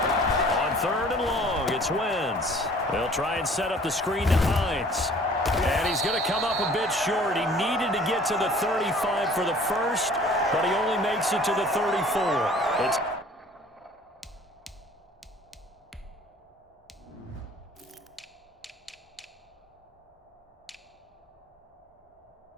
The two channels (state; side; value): normal; both; correlation 0.51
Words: Third and long, it's Wentz. They'll try and set up the screen to Hines. And he's going to come up a bit short. He needed to get to the 35 for the first, but he only makes it to the 34. It's